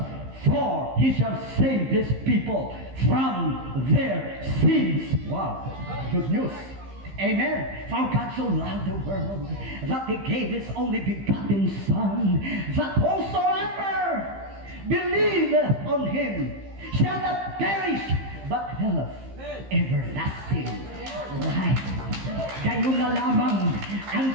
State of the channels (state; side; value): late; left; 15 ms